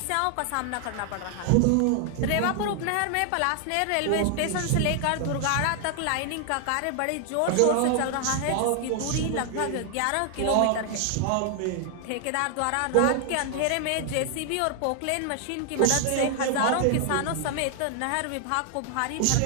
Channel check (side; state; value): both; different; correlation 0.00